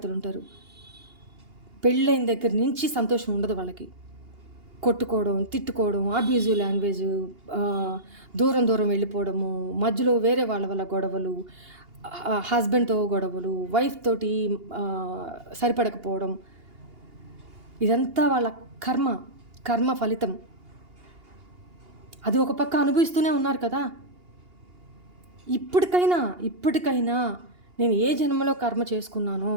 ఉంటారు, పెళ్ళైన దగ్గర నుంచి సంతోషం ఉండదు వాళ్ళకి. కొట్టుకోవడం, తిట్టుకోవడం, అబ్యూజివ్ లాంగ్వేజ్, దూరం దూరం వెళ్ళిపోవడము, మధ్యలో వేరే వాళ్ళ వల్ల గొడవలు, హస్బెండ్తో గొడవలు, వైఫ్ తోటి సరిపడకపోవడం, ఇదంతా వాళ్ళ కర్మ ఫలితం. అది ఒక పక్క అనుభవిస్తూనే ఉన్నారు కదా. ఇప్పటికైనా నేను ఏ జన్మలో కర్మ చేసుకున్నానో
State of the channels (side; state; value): left; late; 2.8 ms